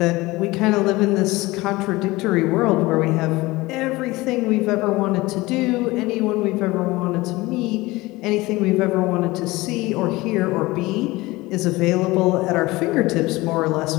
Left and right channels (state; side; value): quieter; right; 20.6 dB